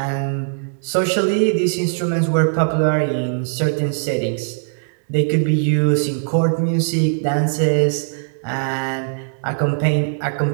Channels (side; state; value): left; silent; digital silence